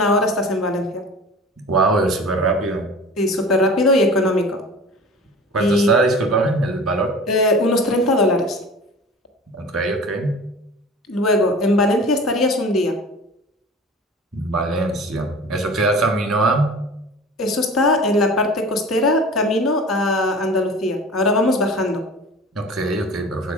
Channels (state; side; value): normal; both; correlation 0.39